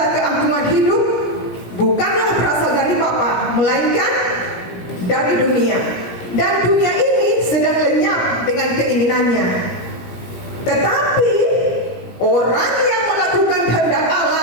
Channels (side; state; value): right; late; 17 ms